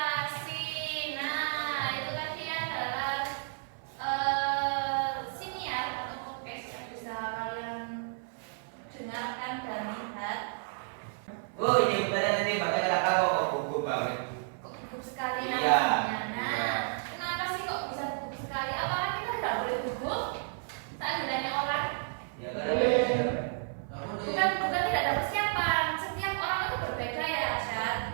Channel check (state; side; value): silent; left; 56 dB below the other